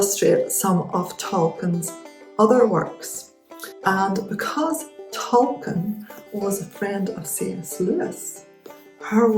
some of Tolkien's other works. And because Tolkien was a friend of C.S. Lewis, her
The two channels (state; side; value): identical; both; correlation 1.00